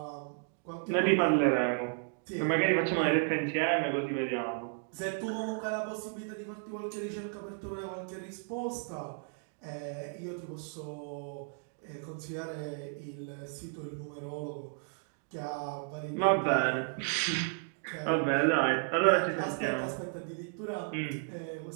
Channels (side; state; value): left; silent; 55 dB below the other